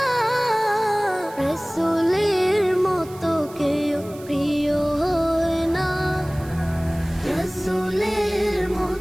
রাসূলের মতো কেউ প্রিয় হয় না, রাসূলের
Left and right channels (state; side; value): noise; right; hiss, 21 dB below the sound